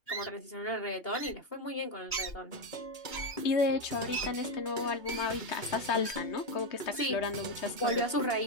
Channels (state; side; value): late; right; 3.2 ms